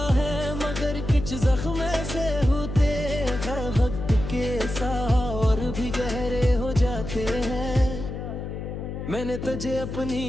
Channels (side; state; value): left; noise; hum, 7 dB below the sound